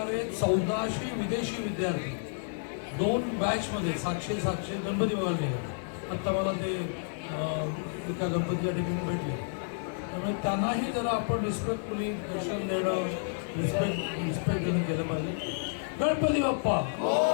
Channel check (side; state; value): right; silent; digital silence